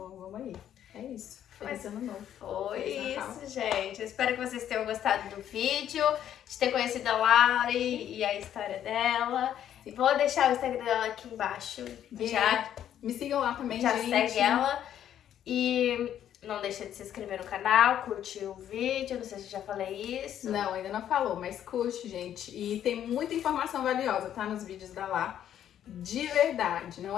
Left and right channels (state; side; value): quieter; right; 10.4 dB